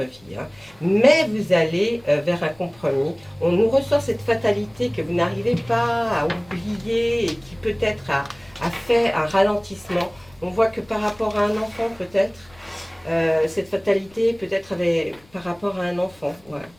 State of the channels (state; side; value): noise; left; rumble, 28 dB below the sound